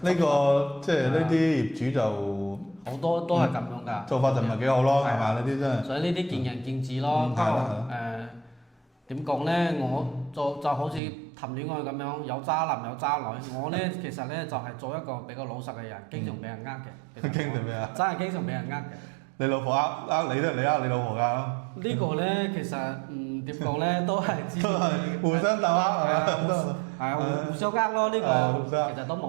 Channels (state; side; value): drops out; left; at 11.0 s